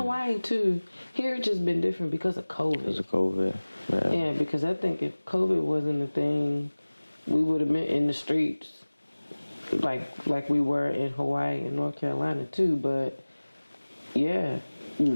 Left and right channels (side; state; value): both; inverted; correlation -1.00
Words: too. Here it's just been different because of COVID. Because of COVID. Yeah, because I think if COVID wasn't a thing, we would have been in the streets like we were in Hawaii and North Carolina too. But yeah,